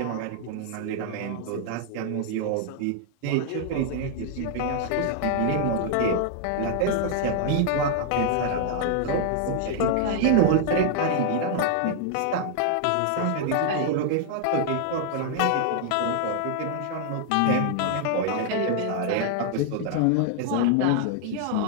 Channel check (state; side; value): different; both; correlation -0.01